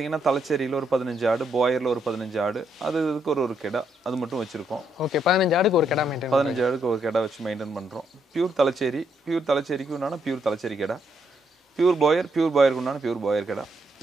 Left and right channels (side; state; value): both; normal; correlation 0.76